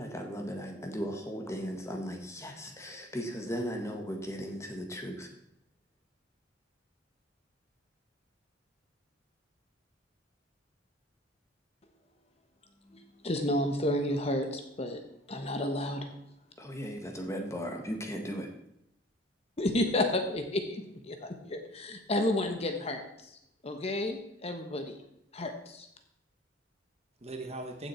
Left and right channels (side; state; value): both; normal; correlation 0.48